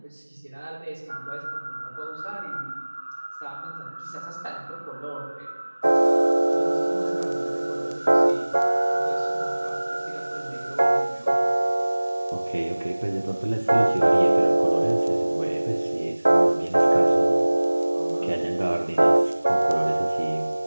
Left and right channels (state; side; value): inverted; both; correlation -1.00